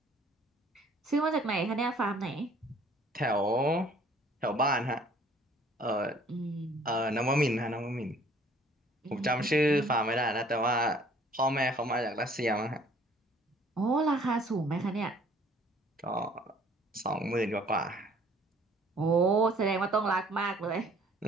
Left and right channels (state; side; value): normal; both; correlation 0.56